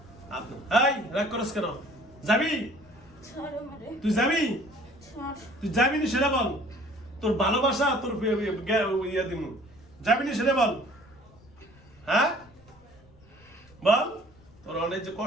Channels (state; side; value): noise; left; rumble, 27 dB below the sound